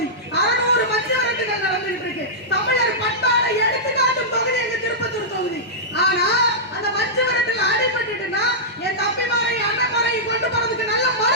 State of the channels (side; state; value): both; normal; correlation -0.12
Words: 600 மஞ்சு விரட்டுகள் நடந்துட்டு இருக்கு. தமிழர் பண்பாடை எடுத்துக்காட்டும் தொகுதி எங்க திருப்பத்தூர் தொகுதி. ஆனா அந்த மஞ்சு விரட்டுல அடிபட்டுட்டுனா என் தம்பிமாரையும் அண்ணன்மாரையும் கொண்டு போறதுக்கு நல்ல